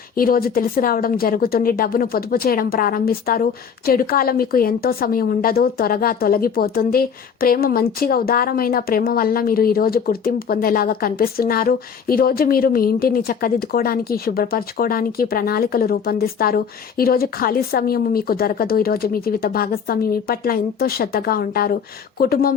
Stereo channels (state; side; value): quieter; right; 6.8 dB